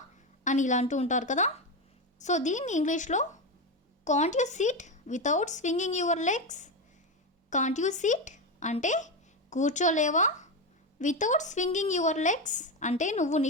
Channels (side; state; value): both; normal; correlation 0.14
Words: అని ఇలా అంటూ ఉంటారు కదా. సో దీన్ని ఇంగ్లీష్లో can't you SIT without swinging your legs. Can't you SIT అంటే కూర్చోలేవా. వితౌట్ స్వింగింగ్ యువర్ లెగ్స్ అంటే నువ్వు